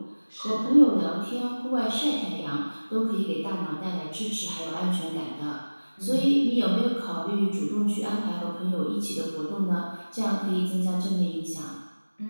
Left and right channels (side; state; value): both; inverted; correlation -1.00